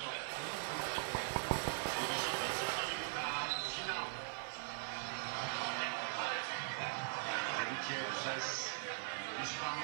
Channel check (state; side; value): silent; left; digital silence